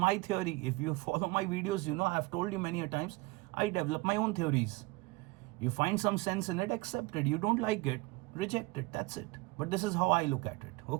theory. If you follow my videos, you know I have told you many a times, I develop my own theories. You find some sense in it, accept it. You don't like it, reject it. That's it. But this is how I look at it.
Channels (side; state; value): left; quieter; 22.9 dB